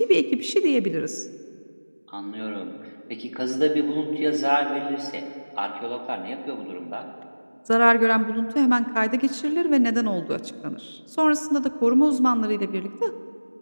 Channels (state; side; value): inverted; both; correlation -1.00